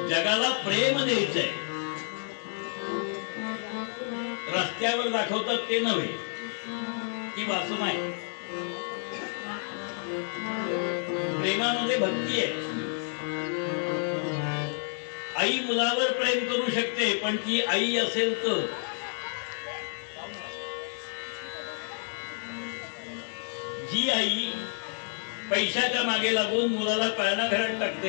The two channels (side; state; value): right; silent; 58 dB below the other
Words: जगाला प्रेम द्यायचंय. रस्त्यावर दाखवतात ते नव्हे, ती वासना आहे. प्रेमामध्ये भक्ती आहे. आई मुलावर प्रेम करू शकते, पण ती आई असेल तर. जी आई पैशाच्या मागे लागून मुलाला पाळणा घरात